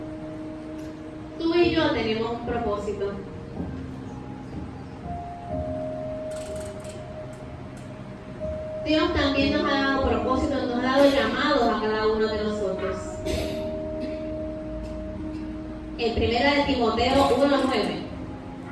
Tú y yo tenemos un propósito. Dios también nos ha dado propósitos, nos ha dado llamados a cada uno de nosotros. En 1 de Timoteo 1:9.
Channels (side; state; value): both; identical; correlation 1.00